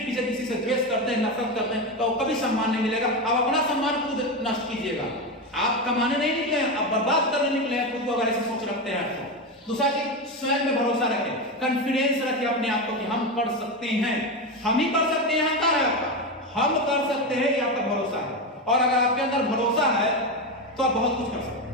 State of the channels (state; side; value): normal; both; correlation 0.15